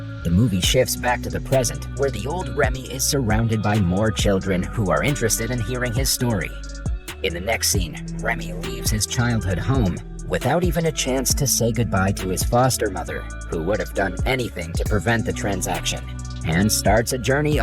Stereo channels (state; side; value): identical; both; correlation 1.00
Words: The movie shifts back to the present, where the old Remi is surrounded by more children who are interested in hearing his story. In the next scene, Remi leaves his childhood home without even a chance to say goodbye to his foster mother, who would have done anything to prevent the transaction, and starts a journey